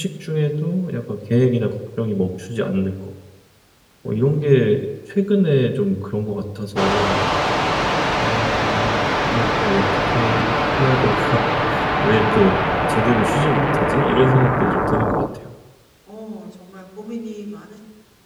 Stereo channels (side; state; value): both; identical; correlation 1.00